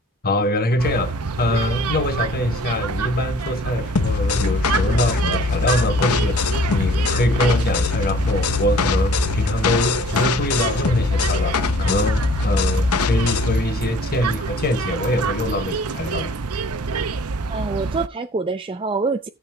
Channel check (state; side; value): normal; both; correlation 0.52